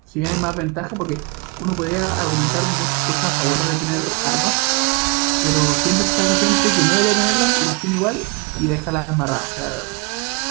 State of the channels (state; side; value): quieter; left; 30.5 dB